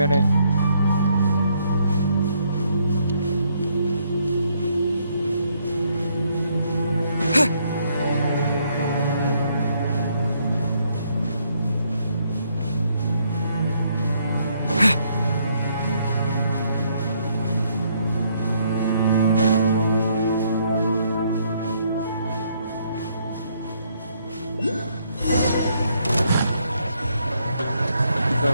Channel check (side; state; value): both; inverted; correlation -0.71